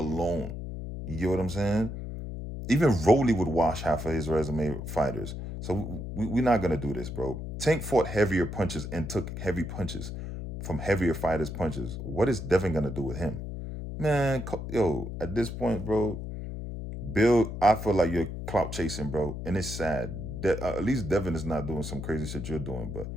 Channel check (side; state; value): left; noise; hum, 7 dB below the sound